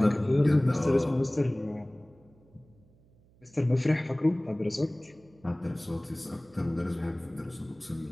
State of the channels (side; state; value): right; noise; hum, 30 dB below the sound